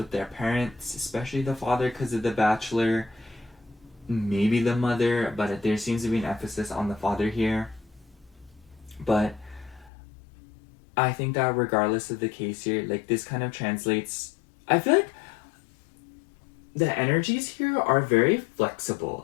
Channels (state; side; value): drops out; right; at 9.9 s